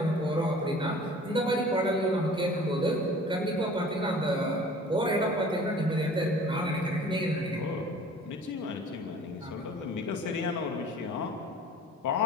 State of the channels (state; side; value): normal; both; correlation 0.47